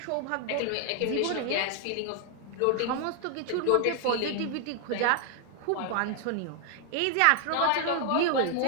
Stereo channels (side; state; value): both; different; correlation 0.00